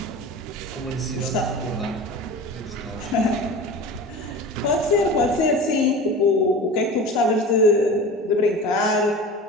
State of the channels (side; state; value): both; normal; correlation 0.34